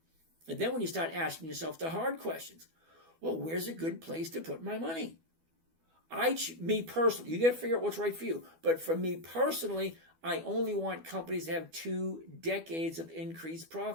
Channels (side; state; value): left; late; 12 ms